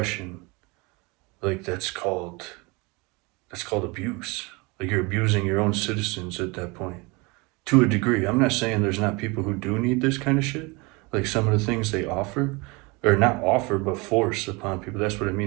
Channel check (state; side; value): quieter; left; 26.8 dB